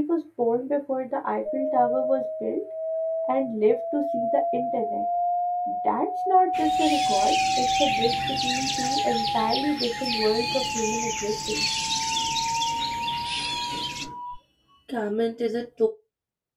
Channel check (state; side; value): identical; both; correlation 1.00